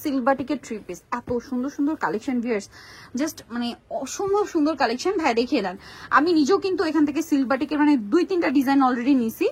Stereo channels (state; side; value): identical; both; correlation 1.00